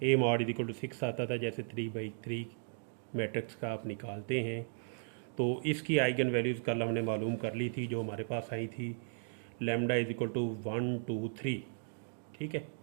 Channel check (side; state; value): left; silent; digital silence